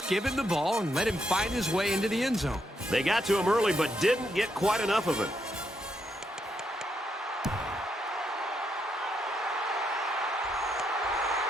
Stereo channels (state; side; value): normal; both; correlation 0.79